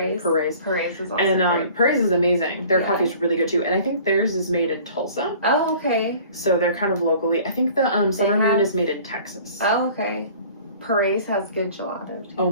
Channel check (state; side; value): inverted; both; correlation -0.48